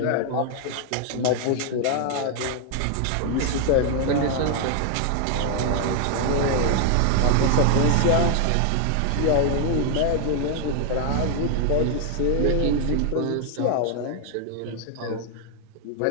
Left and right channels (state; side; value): different; both; correlation 0.00